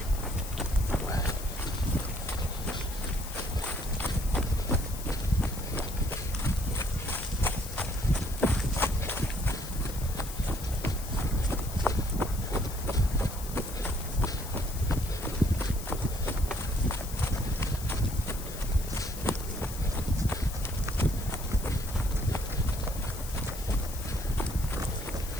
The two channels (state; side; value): noise; left; hiss, 11 dB below the sound